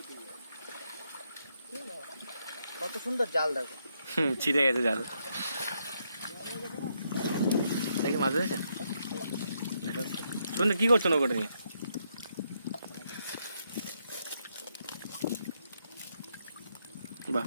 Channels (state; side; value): inverted; both; correlation -0.78